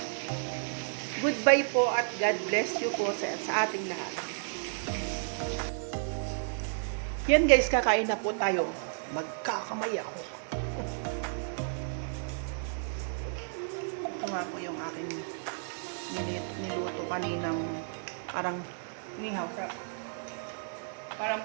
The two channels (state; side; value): silent; left; digital silence